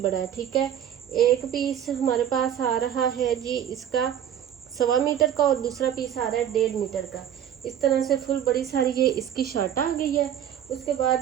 है। ठीक है, एक पीस हमारे पास आ रहा है जी इसका 1.25 मीटर का, और दूसरा पीस आ रहा है 1.5 मीटर का। इस तरह से फुल बड़ी सारी ये इसकी शर्ट आ गई है। उसके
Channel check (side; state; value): left; quieter; 9.9 dB